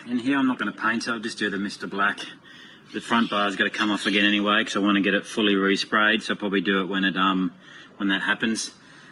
in here. I'm not going to paint it, I'll just do the Mr. Black. The front bar's got to come off again anyway because I want to get it fully resprayed, so I'll probably do it when that happens.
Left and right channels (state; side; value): identical; both; correlation 1.00